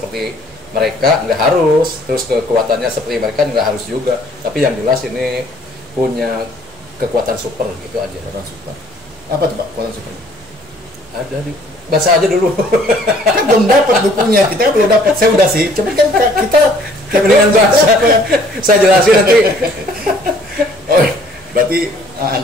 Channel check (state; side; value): normal; both; correlation 0.58